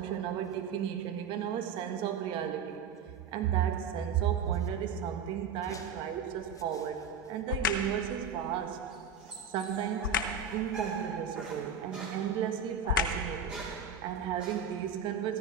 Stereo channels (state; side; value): quieter; left; 5.4 dB